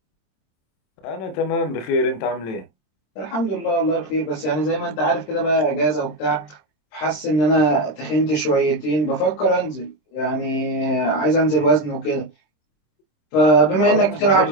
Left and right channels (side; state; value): right; late; 26 ms